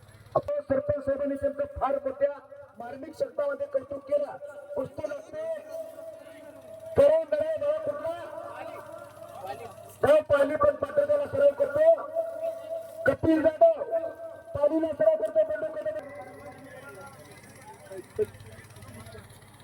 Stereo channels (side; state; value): both; identical; correlation 1.00